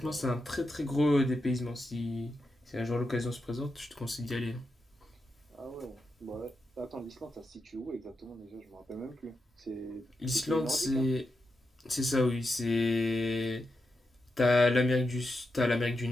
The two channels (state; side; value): normal; both; correlation 0.87